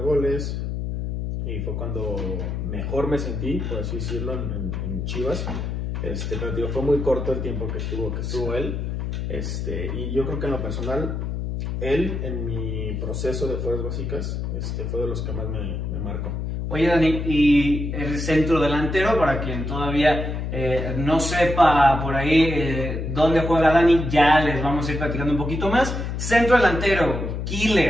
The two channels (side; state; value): left; noise; hum, 3 dB below the sound